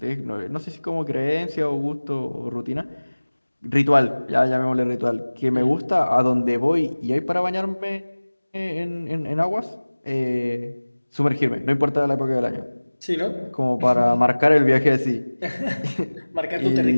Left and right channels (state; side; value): inverted; both; correlation -1.00